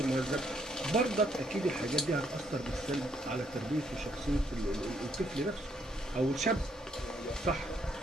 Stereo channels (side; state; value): both; normal; correlation 0.71